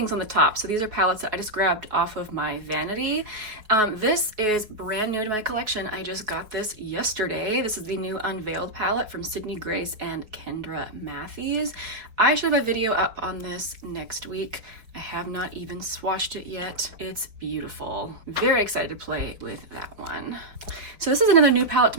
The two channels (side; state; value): left; late; 4.5 ms